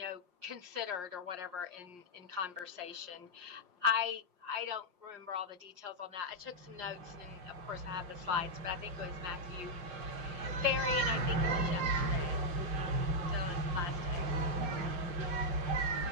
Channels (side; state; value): left; late; 5.6 ms